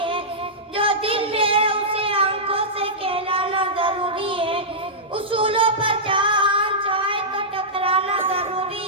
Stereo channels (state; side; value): normal; both; correlation -0.13